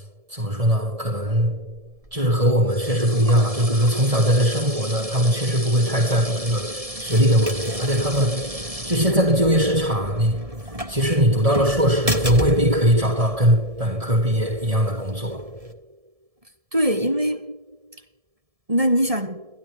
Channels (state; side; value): late; left; 1.7 ms